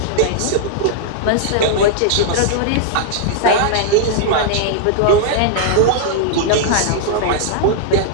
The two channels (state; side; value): different; both; correlation -0.01